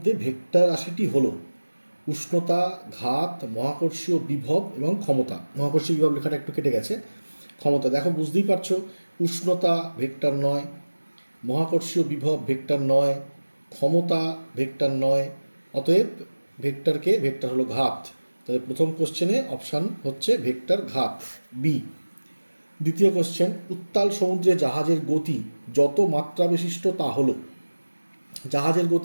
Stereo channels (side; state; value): both; inverted; correlation -1.00